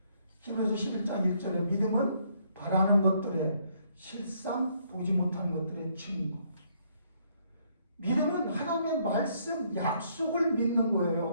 히브리서 11장 1절에 믿음은 바라는 것들의 실상, 보지 못한 것들의 증거. 믿음은 하나님의 말씀, 약속을 믿는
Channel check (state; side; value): inverted; both; correlation -0.69